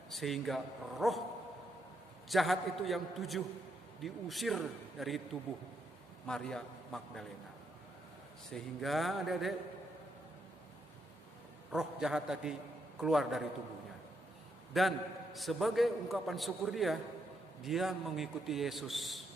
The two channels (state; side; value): normal; both; correlation 0.78